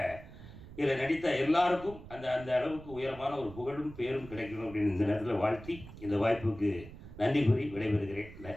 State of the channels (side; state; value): right; noise; rumble, 16 dB below the sound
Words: இதில் நடித்த எல்லாருக்கும் அந்த அந்த அளவுக்கு உயரமான ஒரு புகழும் பேரும் கிடைக்கணும் அப்படின்னு இந்த நேரத்தில் வாழ்த்தி இந்த வாய்ப்புக்கு நன்றி கூறி